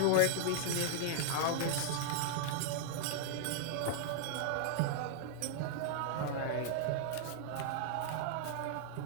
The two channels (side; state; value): both; different; correlation -0.01